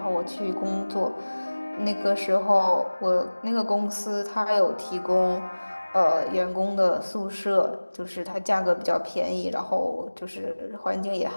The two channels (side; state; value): both; inverted; correlation -1.00